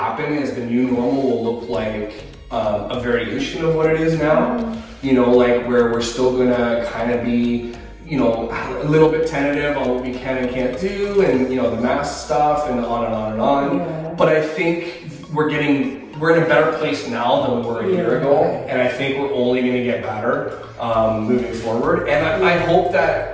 is the new normal will look like a variation of what it is now. You know, like, where we're still gonna kind of be, you know, a little bit tentative on what we can and can't do, and, you know, the mask stuff, and on and on and on. But I think we're in a better place now than we were a year ago, and I think we're only going to get better moving forward. And I hope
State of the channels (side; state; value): both; identical; correlation 1.00